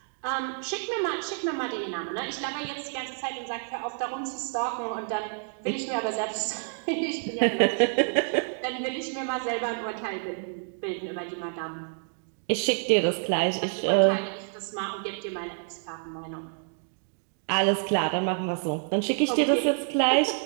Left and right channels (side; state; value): left; silent; 59 dB below the other